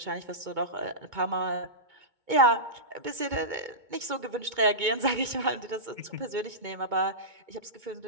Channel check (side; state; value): left; late; 2.2 ms